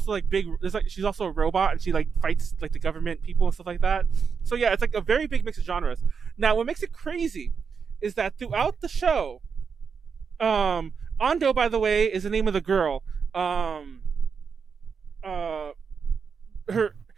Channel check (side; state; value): left; quieter; 6.0 dB